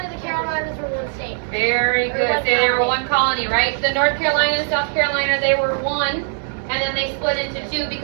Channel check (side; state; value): left; silent; 58 dB below the other